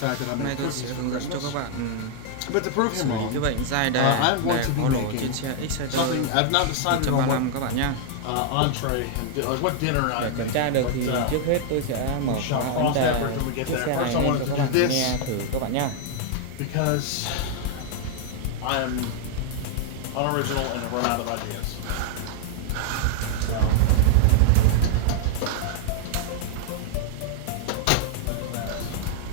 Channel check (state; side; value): different; both; correlation -0.01